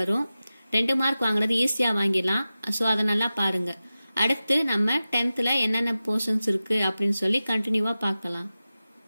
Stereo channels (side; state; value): both; inverted; correlation -0.95